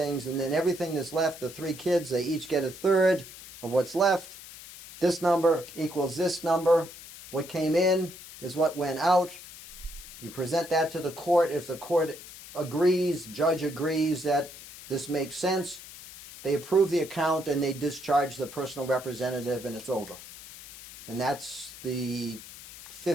and then everything that's left, the 3 kids, they each get a third of what's left. This number equals this number. What came in is what went out. You present that to the court. If the court agrees, judge agrees that this makes sense, they approve the account and they discharge the personal representative, and it's over. And that's the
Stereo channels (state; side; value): noise; left; hiss, 15 dB below the sound